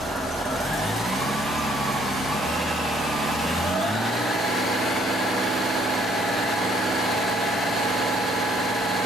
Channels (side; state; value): both; normal; correlation 0.64